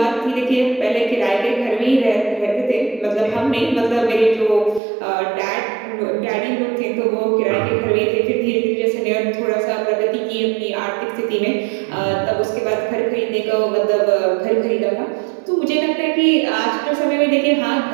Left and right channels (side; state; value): left; drops out; at 4.8 s